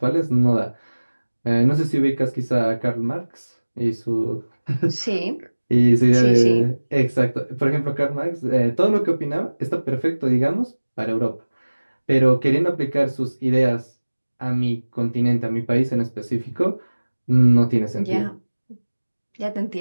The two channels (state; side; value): inverted; both; correlation -1.00